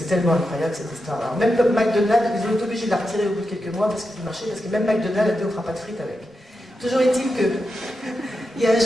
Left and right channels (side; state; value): both; normal; correlation 0.88